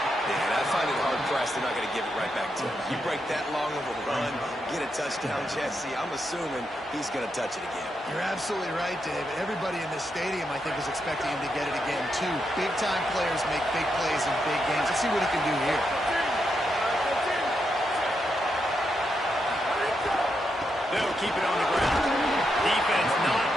Yeah, and I find it hard-pressed they're not going to give it right back to him. You break that long of a run, get a touchdown, Jesse, I'm assuming he's going to touch it again. You're absolutely right, David. Everybody in this stadium, I think, is expecting him to get it again, too. Big-time players make big plays in big games. Let's see what he can do here. They'll keep it on the ground. Defense not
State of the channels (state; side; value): normal; both; correlation 0.83